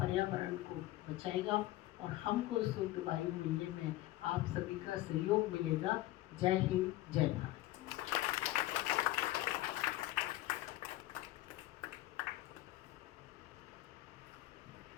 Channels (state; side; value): quieter; right; 16.4 dB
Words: को बचाएगा और हमको शुद्ध वायु मिलने में आप सभी का सहयोग मिलेगा। जय हिंद, जय भारत।